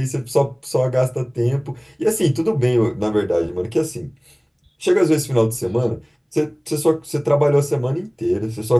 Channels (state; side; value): identical; both; correlation 1.00